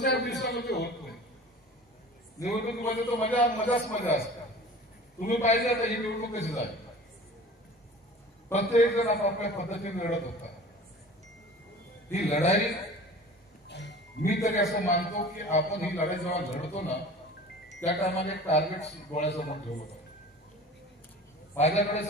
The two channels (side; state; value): both; normal; correlation 0.41